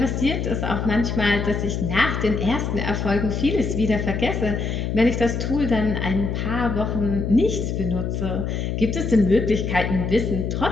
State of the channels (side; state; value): left; noise; hum, 2 dB below the sound